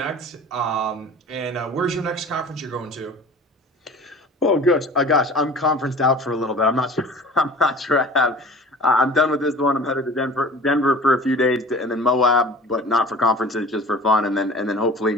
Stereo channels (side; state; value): both; normal; correlation 0.42